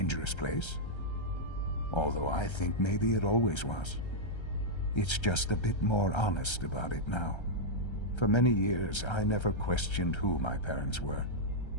place? Although I think maybe it always was. It's just a bit more honest about it now. For many years, I never questioned who my parents were.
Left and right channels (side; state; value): right; late; 1.3 ms